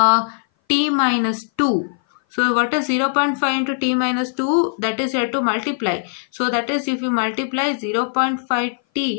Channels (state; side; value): silent; right; 58 dB below the other